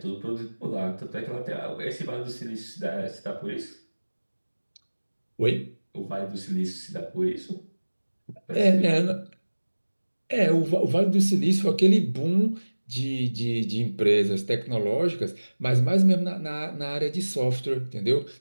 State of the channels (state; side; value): inverted; both; correlation -1.00